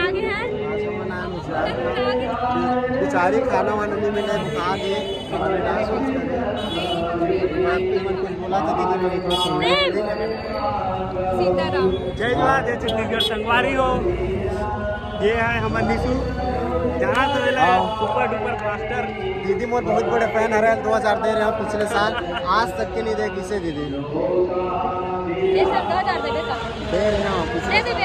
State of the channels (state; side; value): identical; both; correlation 1.00